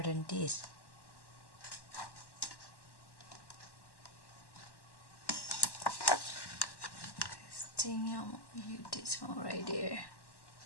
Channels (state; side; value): late; right; 1.1 ms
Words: than this. This thing, I'm gonna use this one right there.